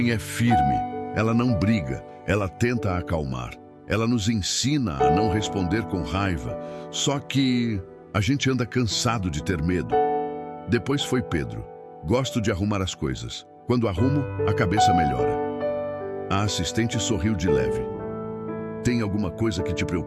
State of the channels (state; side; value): identical; both; correlation 1.00